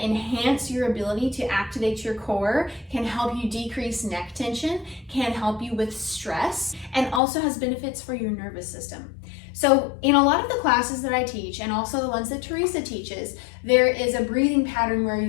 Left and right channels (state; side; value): drops out; right; at 7.2 s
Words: enhance your ability to activate your core, can help you decrease neck tension, can help you with stress, and also has benefits for your nervous system. So in a lot of the classes that I teach, and also the ones that Teresa teaches, there is a breathing pattern where